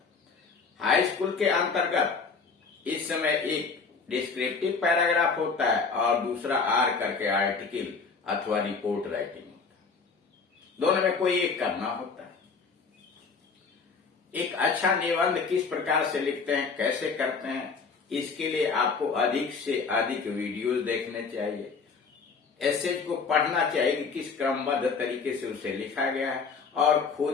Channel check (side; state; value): right; quieter; 5.0 dB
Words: हाई स्कूल के अंतर्गत इस समय एक डिस्क्रिप्टिव पैराग्राफ होता है और दूसरा आर करके आर्टिकल अथवा रिपोर्ट राइटिंग होता है। दोनों में कोई एक करना होता है। एक अच्छा निबंध किस प्रकार से लिखते हैं, कैसे करते हैं, इसके लिए आपको अधिक से अधिक वीडियोस देखने चाहिए। एस्से को पढ़ना चाहिए कि किस क्रमबद्ध तरीके से उसे लिखा गया है और